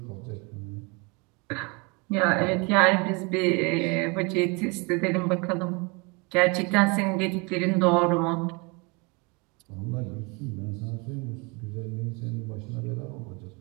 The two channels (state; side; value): quieter; left; 28.5 dB